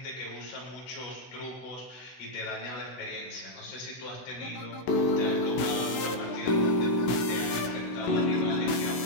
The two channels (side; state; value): right; late; 16 ms